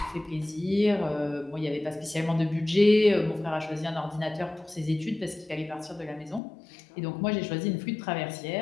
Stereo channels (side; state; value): right; drops out; at 6.4 s